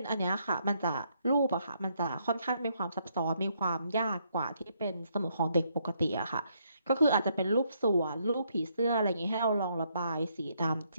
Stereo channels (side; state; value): both; inverted; correlation -0.74